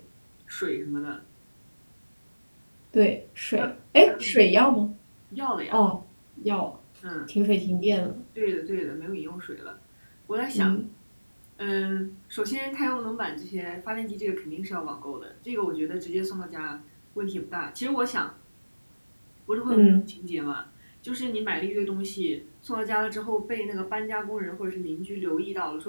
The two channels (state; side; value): inverted; both; correlation -1.00